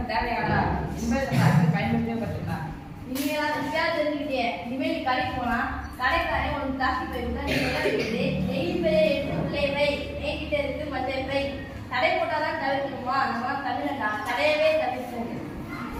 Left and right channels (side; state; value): both; identical; correlation 1.00